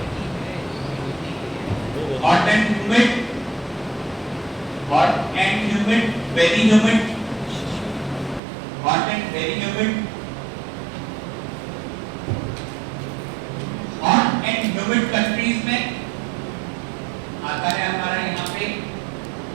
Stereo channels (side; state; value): left; drops out; at 8.4 s